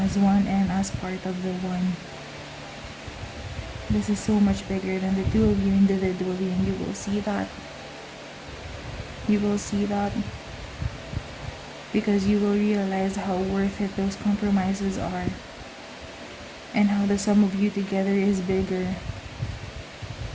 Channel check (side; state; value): both; identical; correlation 1.00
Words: one and as part of the one. This is so much bigger than the two of you individually, and you will see that. You will see that because you will realize how worth it those compromises are, and how the sum of you together is bigger